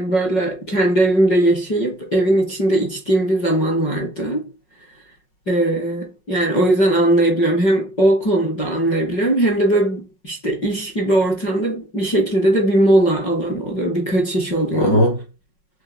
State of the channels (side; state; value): right; late; 5.4 ms